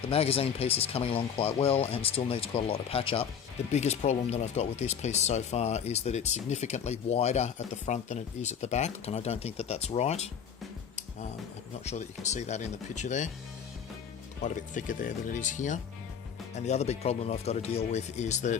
The magazine piece is coming along quite well and still needs quite a lot of patch up. The biggest problem that I've got with this piece so far is that it's significantly wider at the front than it is at the back, and I don't think that that's right. I'm not sure that you can see that in the picture there. Quite a bit thicker there than it is here. And the other big problem I've got to deal with is that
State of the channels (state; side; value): quieter; right; 7.6 dB